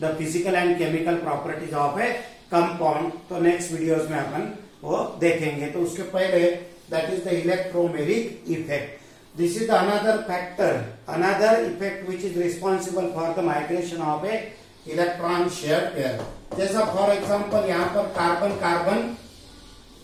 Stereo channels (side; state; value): both; identical; correlation 1.00